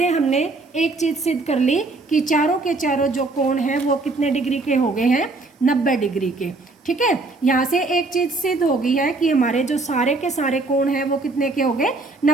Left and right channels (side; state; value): left; quieter; 3.4 dB